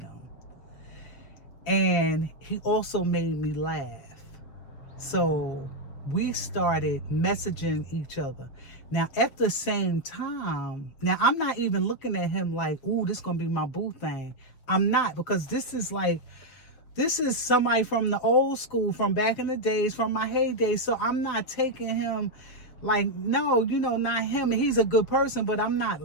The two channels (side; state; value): right; late; 7.4 ms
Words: And he also made me laugh. So we started messaging each other. Now, at the same time, now I'm not even looking at him like, ooh, this is going to be my boo thing. I'm not, because this is somebody from the old school, from back in the days, from my heyday. So I'm not taking him like, no, you know, not him. He's a good person, but I'm not